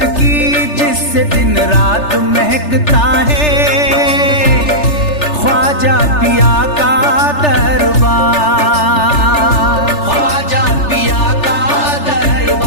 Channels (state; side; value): late; right; 3.3 ms